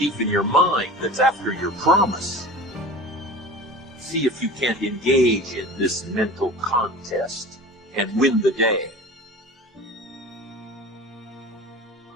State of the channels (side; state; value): both; normal; correlation 0.36